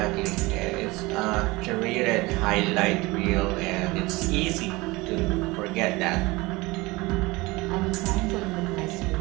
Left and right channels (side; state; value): left; quieter; 22.4 dB